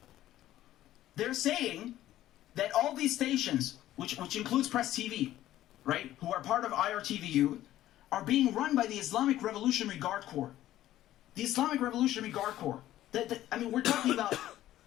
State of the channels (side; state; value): right; quieter; 13.7 dB